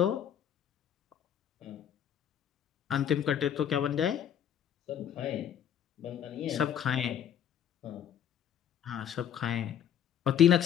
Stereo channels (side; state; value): right; quieter; 9.4 dB